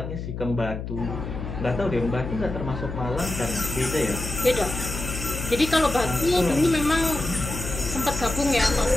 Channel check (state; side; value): noise; left; hum, 7 dB below the sound